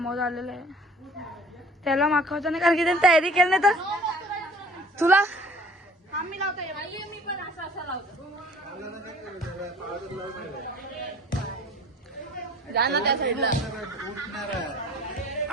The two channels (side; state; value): both; normal; correlation 0.49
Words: हाऊस आलेला आहे. त्याला माखवता नाही कारण की त्याने तयारी केली नाही तर तुला जा ना त्या साईडला.